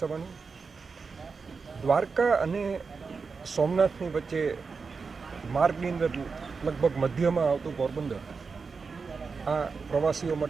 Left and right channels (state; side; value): quieter; left; 4.9 dB